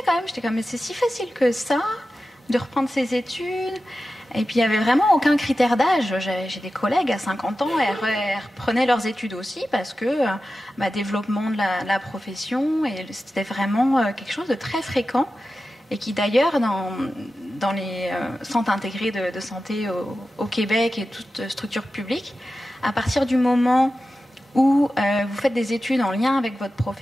quand même. J'étais comme, mais c'est si facile que ça de reprendre ses études. Et puis, il n'y avait vraiment aucun critère d'âge. J'ai des collègues à 50 ans, elles reprenaient leurs études aussi parce que développement de la profession, et c'était vraiment quelque chose de très fréquent et qui d'ailleurs, dans les centres intégrés de santé au Québec et toutes structures publiques, à partir du moment où vous faites des études en lien avec votre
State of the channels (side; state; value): both; normal; correlation 0.93